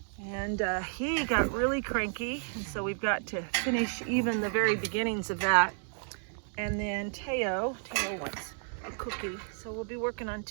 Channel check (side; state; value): left; silent; 57 dB below the other